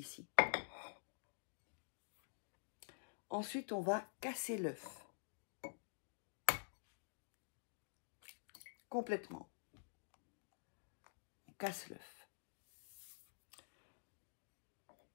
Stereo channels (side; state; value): right; silent; digital silence